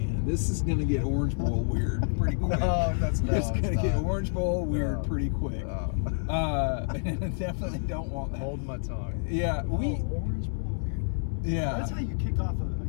this is gonna get Orange Bowl weird pretty quick. It's gonna get Orange Bowl weird pretty quick. Definitely don't want that. Hold my tongue. Yeah, Orange Bowl weird. Yeah, that's how you kick off a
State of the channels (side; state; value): right; silent; 59 dB below the other